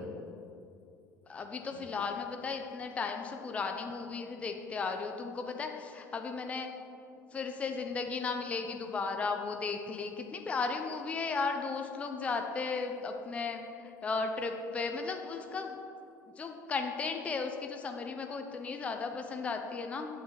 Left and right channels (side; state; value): right; quieter; 4.1 dB